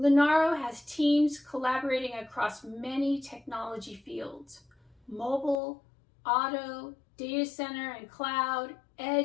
has teams collaborating across many technology fields: mobile, auto, data center and cloud,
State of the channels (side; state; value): right; drops out; at 5.6 s